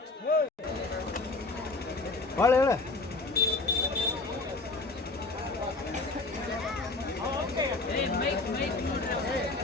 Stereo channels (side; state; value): right; quieter; 3.4 dB